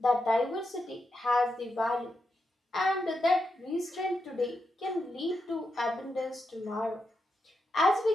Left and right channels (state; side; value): normal; both; correlation 0.86